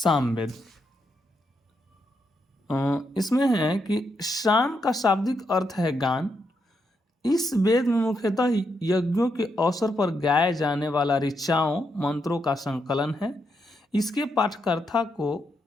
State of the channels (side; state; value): both; normal; correlation 0.81